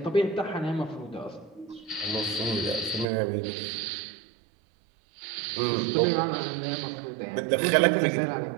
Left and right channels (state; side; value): drops out; left; at 3.1 s